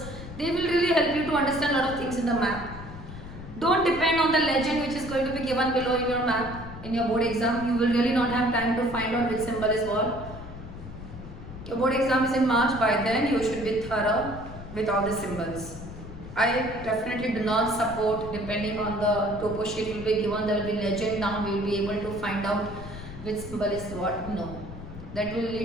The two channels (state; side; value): noise; left; rumble, 12 dB below the sound